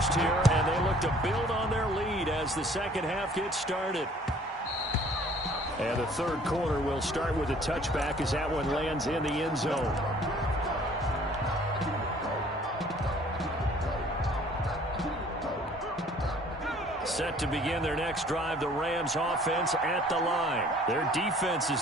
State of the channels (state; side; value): normal; both; correlation 0.55